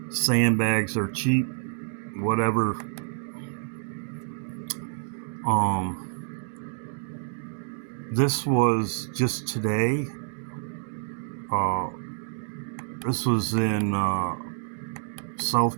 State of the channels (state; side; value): silent; left; digital silence